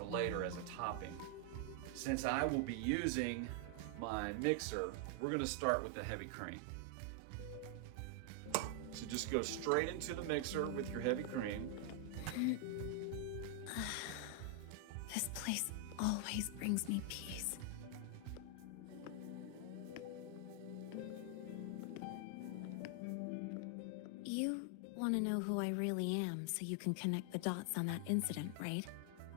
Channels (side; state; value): both; different; correlation 0.00